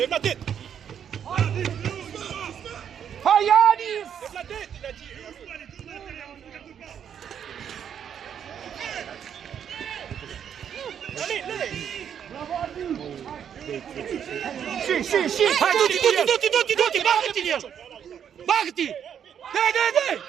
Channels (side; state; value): left; quieter; 8.5 dB